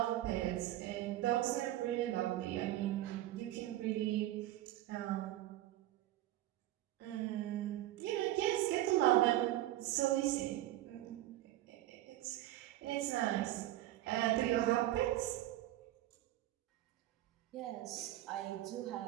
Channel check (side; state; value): left; quieter; 14.8 dB